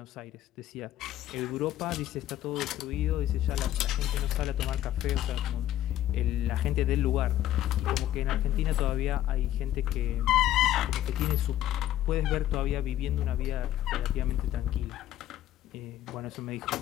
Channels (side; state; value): right; quieter; 12.8 dB